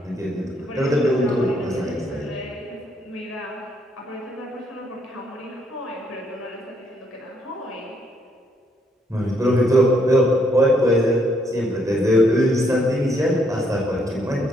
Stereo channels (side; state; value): both; normal; correlation 0.71